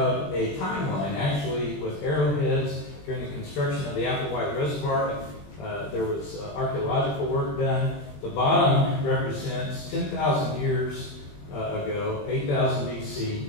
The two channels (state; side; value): late; right; 20 ms